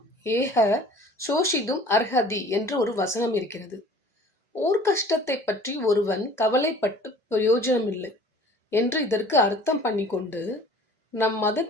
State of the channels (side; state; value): both; normal; correlation 0.48